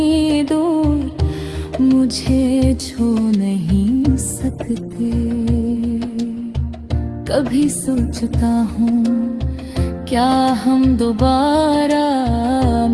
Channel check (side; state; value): both; identical; correlation 1.00